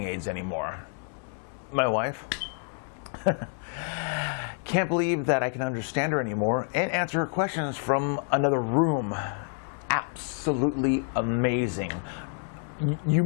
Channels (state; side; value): silent; right; 59 dB below the other